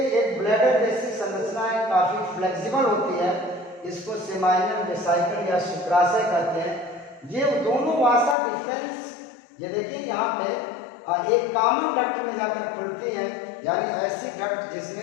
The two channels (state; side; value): drops out; right; at 8.3 s